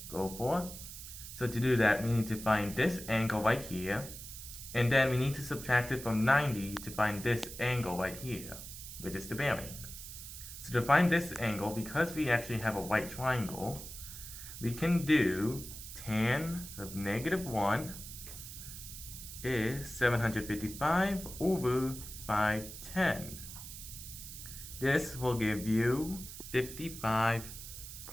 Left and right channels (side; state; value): right; noise; hiss, 11 dB below the sound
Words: go for. So to do that, we need to find this angle right here, and then we need to subtract it from 90 to find this angle right here, which is the bearing. So to find this angle, because we actually have a right triangle, we can do tan of -1 is 755 over 510. This will give you